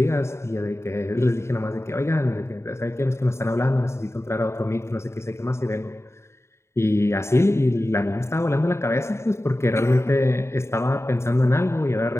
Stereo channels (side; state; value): right; late; 0.13 ms